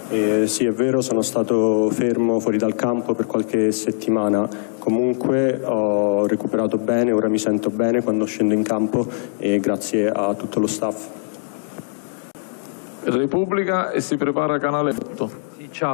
Sì, è vero, sono stato fermo fuori dal campo per qualche settimana, comunque ho recuperato bene, ora mi sento bene quando scendo in campo e grazie a tutto lo staff. Repubblica e si prepara Canale 8. Sì,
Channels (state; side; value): silent; right; digital silence